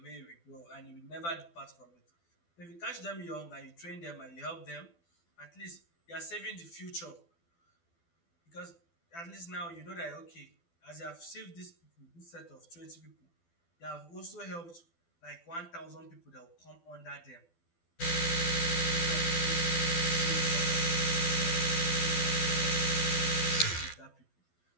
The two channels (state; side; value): late; right; 12 ms